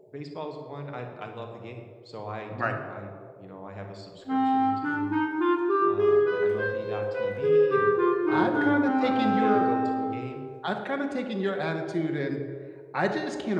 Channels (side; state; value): both; identical; correlation 1.00